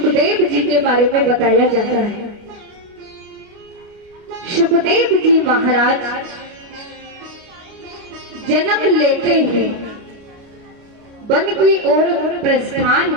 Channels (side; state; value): left; late; 29 ms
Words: जी के बारे में बताया जाता है। सुखदेव जी महाराज जन्म लेते ही वन की ओर प्रस्थान